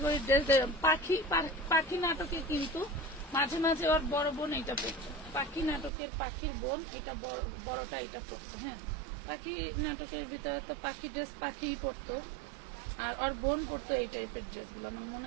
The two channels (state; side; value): drops out; left; at 5.9 s